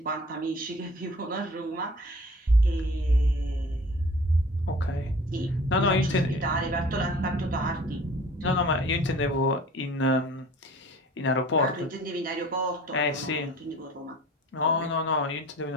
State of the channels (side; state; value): both; normal; correlation 0.46